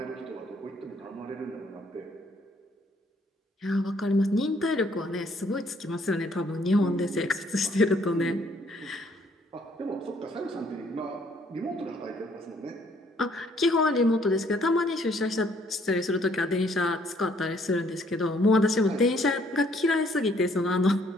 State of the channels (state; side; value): normal; both; correlation 0.65